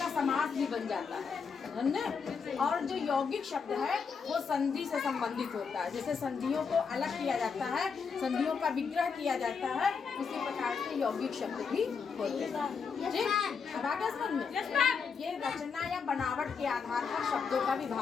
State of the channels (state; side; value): quieter; right; 5.7 dB